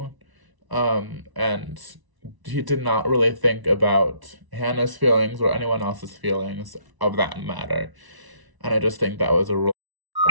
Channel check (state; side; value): late; left; 1.0 ms